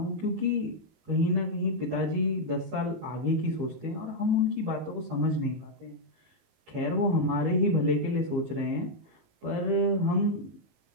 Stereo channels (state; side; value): late; left; 19 ms